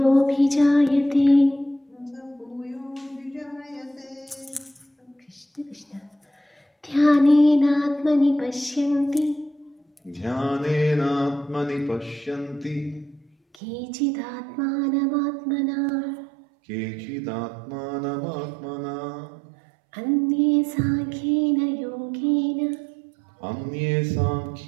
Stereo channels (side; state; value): left; drops out; at 13.6 s